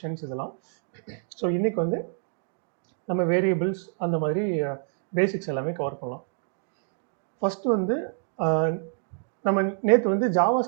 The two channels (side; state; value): left; silent; digital silence